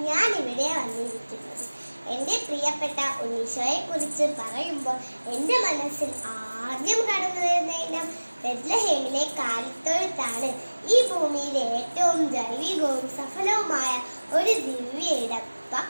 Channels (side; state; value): both; inverted; correlation -1.00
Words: ഞാൻ ഇവിടെ വന്നിരിക്കുന്നത്. എൻ്റെ പ്രിയപ്പെട്ട ഉണ്ണീശോയെ കുറിച്ച് പറയുമ്പോൾ എൻ്റെ മനസ്സിൽ ആദ്യം കടന്നു വരുന്ന ഇനം ബെത്ലഹേമിലെ കാലിത്തൊഴുത്താണ്. ഈ ഭൂമിയിലെ ഏറ്റവും ജൈവികവും സഫലവുമായ ഒരു ദിവ്യ ഇടം.